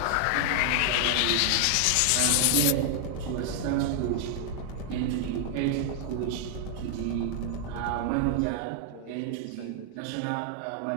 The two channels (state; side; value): different; both; correlation 0.00